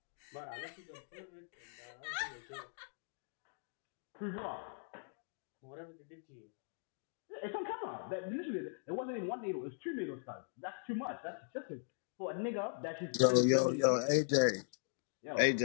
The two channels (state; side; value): silent; right; digital silence